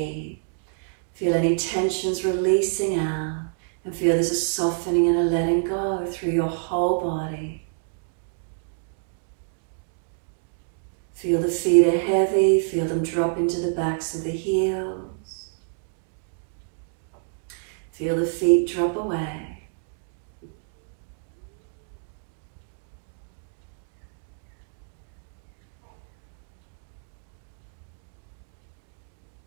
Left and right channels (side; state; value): left; silent; digital silence